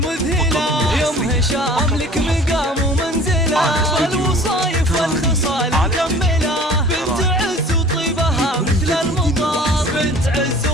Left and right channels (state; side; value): normal; both; correlation 0.46